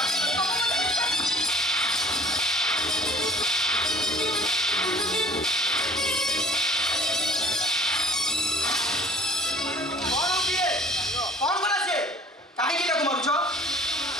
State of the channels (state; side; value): normal; both; correlation 0.50